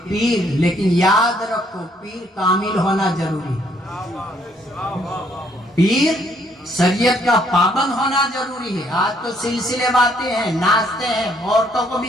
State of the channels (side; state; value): both; normal; correlation 0.67